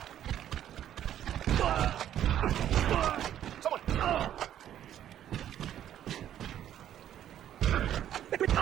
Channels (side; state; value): left; quieter; 11.0 dB